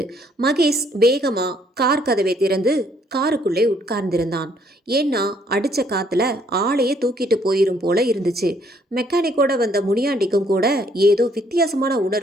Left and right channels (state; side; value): normal; both; correlation 0.66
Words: மகேஷ் வேகமா கார் கதவை திறந்து காருக்குள்ளே உட்கார்ந்திருந்தான். ஏன்னா அடிச்ச காத்துல ஆளையே தூக்கிட்டு போயிரும் போல இருந்துச்சு. மெக்கானிக்கோட வந்த முனியாண்டிக்கும் கூட ஏதோ வித்தியாசமான